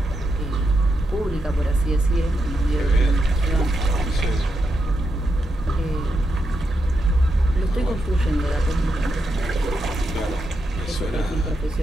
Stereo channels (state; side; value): normal; both; correlation 0.84